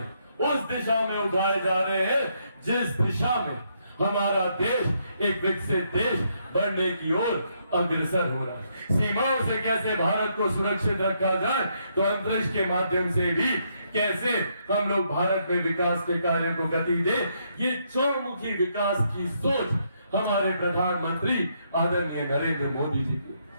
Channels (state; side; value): inverted; both; correlation -0.75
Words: उस दिशा में उठाए जा रहे हैं जिस दिशा में हमारा देश एक विकसित देश बनने की ओर अग्रसर हो रहा है। सीमाओं से कैसे भारत को सुरक्षित रखा जाए, तो अंतरिक्ष के माध्यम से भी कैसे हम लोग भारत में विकास के कार्य को गति दे, ये चौमुखी विकास की सोच हमारे प्रधानमंत्री आदरणीय नरेंद्र मोदी जी